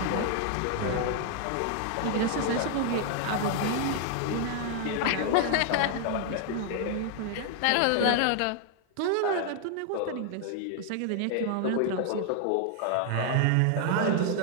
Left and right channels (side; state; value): both; different; correlation 0.00